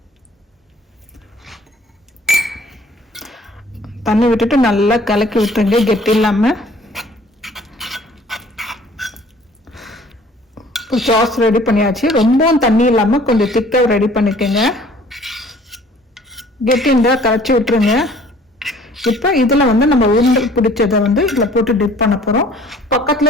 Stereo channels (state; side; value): normal; both; correlation 0.54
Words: தண்ணி விட்டுட்டு நல்லா கலக்கி விட்டுருங்க கெட்டி இல்லாம. சாஸ் ரெடி பண்ணியாச்சு. ரொம்பவும் தண்ணி இல்லாம கொஞ்சம் திக்கா ரெடி பண்ணிக்கோங்க. கெட்டி இருந்தா கரைச்சி விட்டுருங்க. இப்போ இதுல வந்து நம்ம உருண்டை பிடிச்சதை வந்து இதுல போட்டு டிப் பண்ண போறோம்.